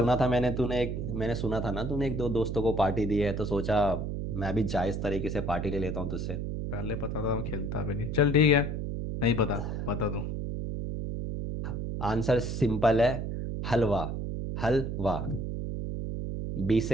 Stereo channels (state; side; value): noise; right; hum, 3 dB below the sound